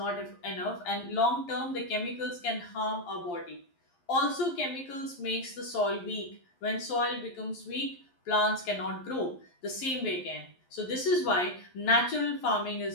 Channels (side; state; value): right; late; 11 ms